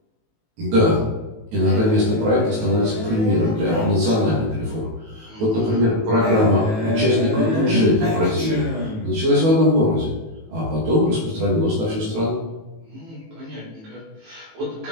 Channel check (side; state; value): left; late; 18 ms